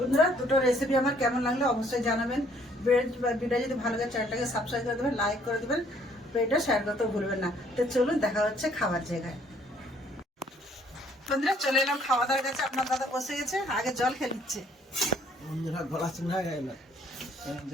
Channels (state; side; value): normal; both; correlation 0.63